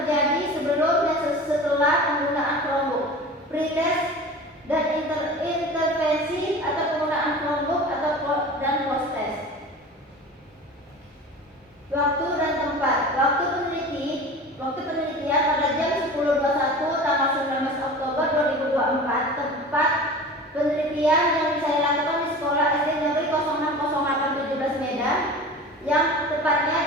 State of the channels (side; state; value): both; normal; correlation 0.36